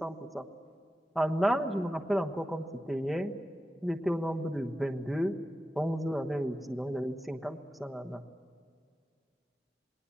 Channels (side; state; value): both; normal; correlation 0.92